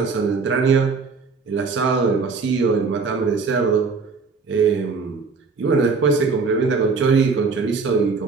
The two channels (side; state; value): left; quieter; 4.7 dB